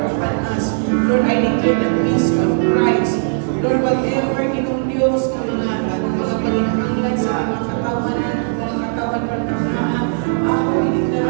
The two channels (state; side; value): silent; left; digital silence